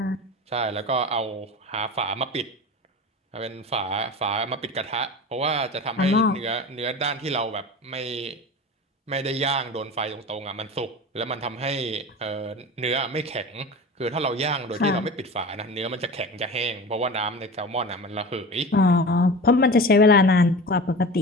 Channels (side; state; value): both; normal; correlation 0.32